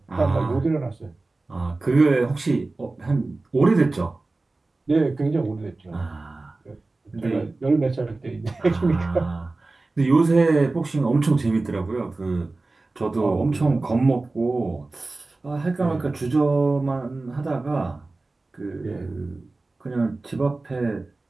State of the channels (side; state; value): left; quieter; 3.3 dB